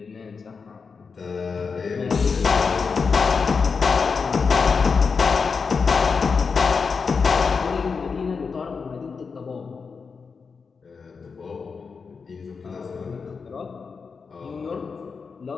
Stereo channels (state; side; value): quieter; right; 5.3 dB